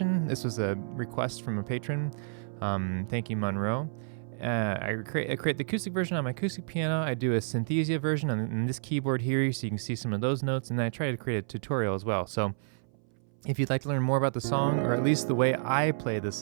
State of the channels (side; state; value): left; silent; 58 dB below the other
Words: This was a request from a patron. Thank you, Monroe. I create the acoustic version on my acoustic piano. I do a Synthesia version on this keyboard here, so you can see some of those notes, and then I try to create a tutorial as well. So if you'd like to learn more about the song, or at least the way I play the